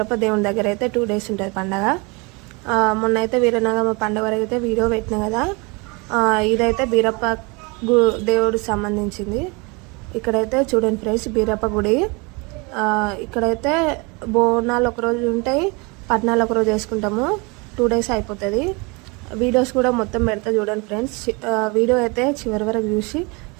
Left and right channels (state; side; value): quieter; left; 28.6 dB